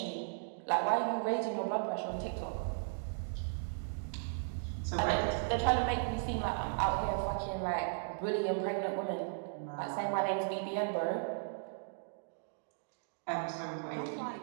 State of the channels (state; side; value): silent; left; digital silence